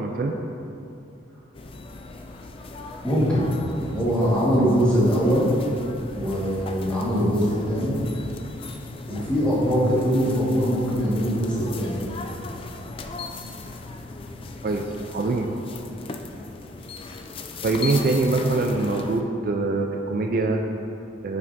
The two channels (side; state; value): both; normal; correlation 0.66